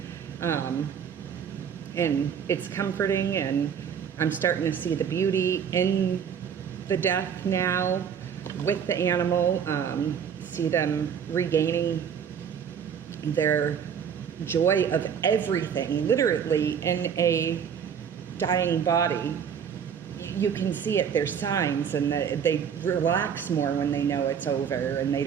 And it's comforting, and I'm starting to see the beauty in the death now with the animal, see them regaining their joy of everything, literally in a dying body. You can see it, there's signs, and they relax more when they know it's over and they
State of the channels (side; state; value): left; quieter; 7.7 dB